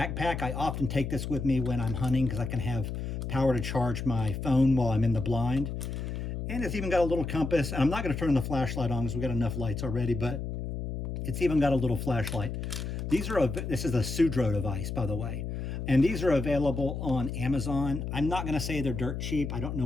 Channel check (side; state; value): left; noise; hum, 4 dB below the sound